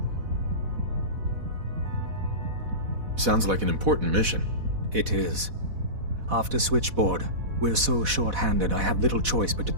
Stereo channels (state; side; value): late; left; 4.1 ms